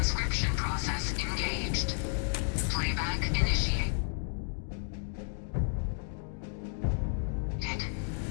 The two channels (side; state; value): right; silent; 56 dB below the other